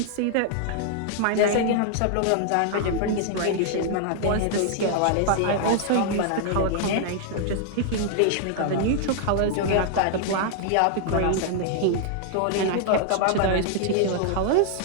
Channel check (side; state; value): both; different; correlation -0.01